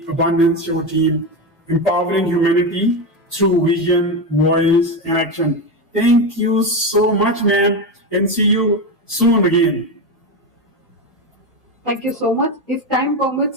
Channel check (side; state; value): both; normal; correlation 0.15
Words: Abundance Show team, empowering humanity through vision, voice, and action. Thank you so much, ma'am, and see you soon again. Thank you so much. If time